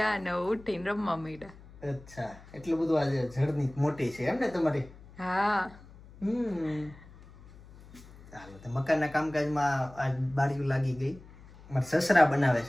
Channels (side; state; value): left; noise; hum, 21 dB below the sound